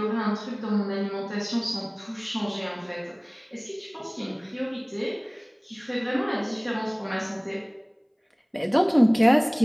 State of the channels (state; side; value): identical; both; correlation 1.00